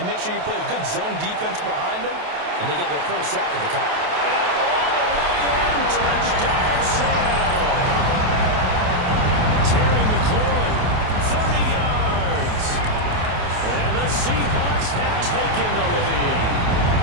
make sure you play a good zone defense behind them, and they get their first sack of the count. And all the way in, touchdown Seattle. Terry McLaurin, 30 yards. And the Seahawks have taken the lead.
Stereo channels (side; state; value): left; late; 28 ms